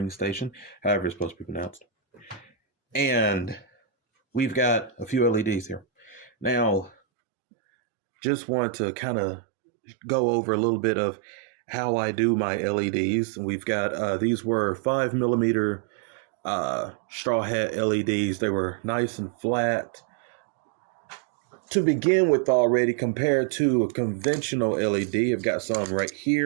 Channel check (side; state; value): left; drops out; at 7.0 s